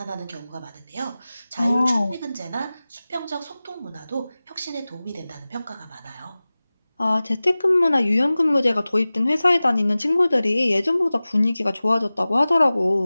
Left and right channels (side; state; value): both; inverted; correlation -0.98